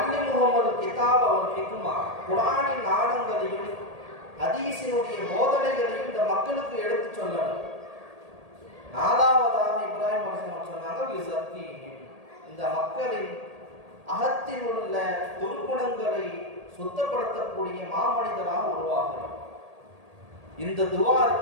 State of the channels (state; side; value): late; left; 1.8 ms